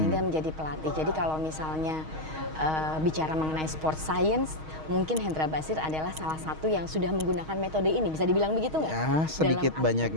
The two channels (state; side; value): late; left; 6.4 ms